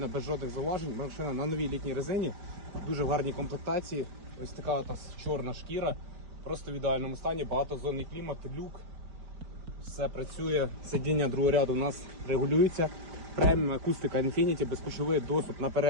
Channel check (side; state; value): left; late; 5.0 ms